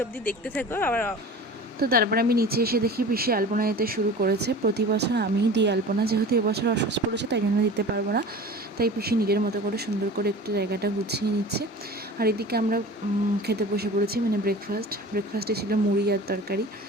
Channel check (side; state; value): both; normal; correlation 0.38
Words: অবধি দেখতে থাকো। আবার তো তারপরে আমি নিচে এসে দেখি পিসি আলপনা দিতে শুরু করেছে। প্রতি বছর আমিই দিই আলপনা, যেহেতু এবছর অসুস্থ পড়েছে তাই জন্য দিতে পারবো না, তাই পিসি নিজের মতো করে সুন্দর করে একটু জায়গাটা গুছিয়ে নিচ্ছে। আর এদিকে আমরা খেতে বসে পড়েছি, মানে ব্রেকফাস্টে ছিল মুড়ি আর তরকারি।